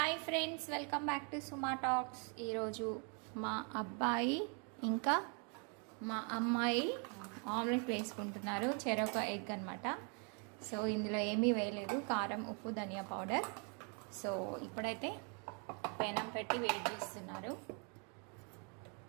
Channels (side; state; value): left; quieter; 37.1 dB